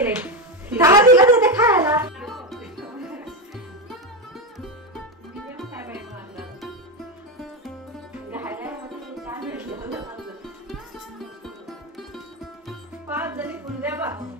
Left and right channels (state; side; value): normal; both; correlation 0.12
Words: तिला देते खायला. पाच जणी पुंद्या बा